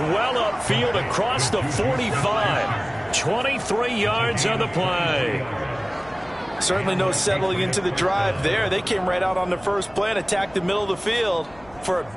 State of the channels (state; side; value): noise; left; hum, 24 dB below the sound